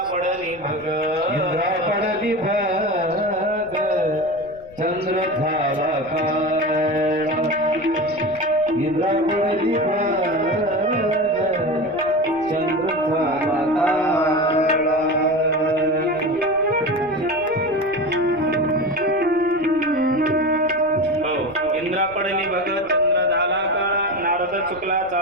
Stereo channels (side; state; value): left; noise; rumble, 24 dB below the sound